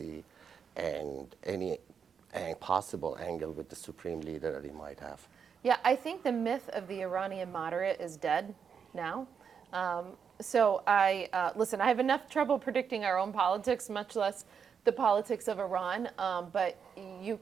and any possible angle with the supreme leader that he might have? Yeah, I think the myth of the Iranian moderate is dead now. So listen, I have enough trouble predicting our own politics, much less the politics of Iran. But you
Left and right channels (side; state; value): left; quieter; 6.8 dB